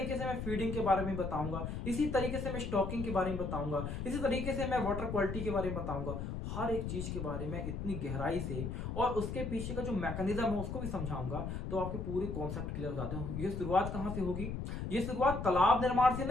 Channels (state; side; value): noise; left; rumble, 4 dB below the sound